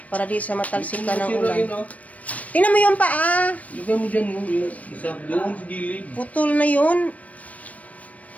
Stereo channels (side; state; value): right; late; 0.068 ms